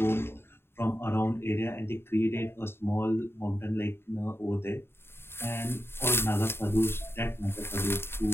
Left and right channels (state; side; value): late; right; 0.11 ms